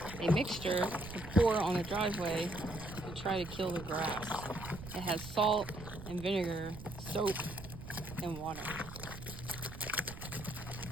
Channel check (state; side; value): noise; right; rumble, 12 dB below the sound